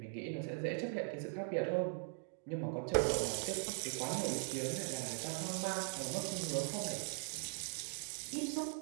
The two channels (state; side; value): silent; left; 51 dB below the other